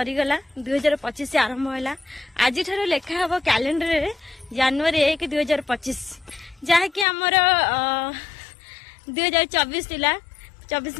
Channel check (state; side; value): drops out; right; at 7.1 s